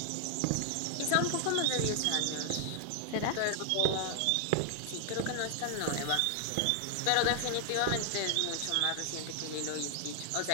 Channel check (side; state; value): both; different; correlation 0.00